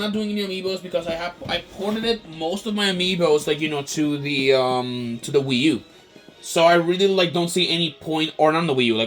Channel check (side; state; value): both; identical; correlation 1.00